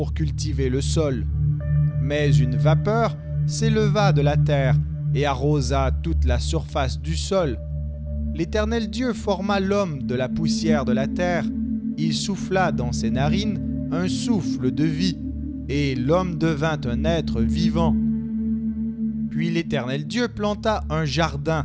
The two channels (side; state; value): both; identical; correlation 1.00